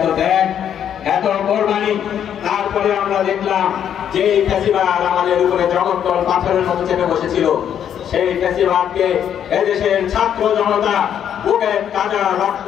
ত্যাগ, এত কোরবানি, তারপরে আমরা দেখলাম যে এই ফ্যাসিবাদ আমাদের উপরে জগদ্দল পাথরের মতো চেপে বসেছিল, সেই ফ্যাসিবাদকে এদেশের ছাত্র জনতা বুকের তাজা রক্ত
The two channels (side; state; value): right; quieter; 9.2 dB